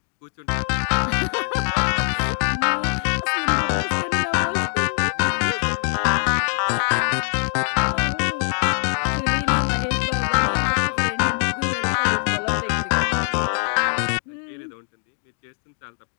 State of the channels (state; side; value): silent; right; digital silence